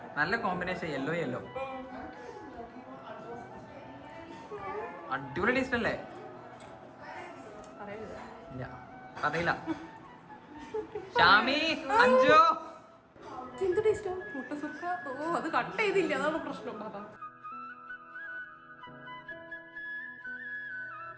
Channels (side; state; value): both; identical; correlation 1.00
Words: നല്ല കോമ്പിനേഷൻ യെല്ലോ യെല്ലോ. അടിപൊളി ടേസ്റ്റ് അല്ലേ? ഇല്ല അറിയില്ല. ഷാമി അഞ്ചോ എന്ത് ടേസ്റ്റാ മുട്ട സുക്ക. ഓ അത് കട്ട് ചെയ്തില്ല, അതാണ് പ്രശ്നം.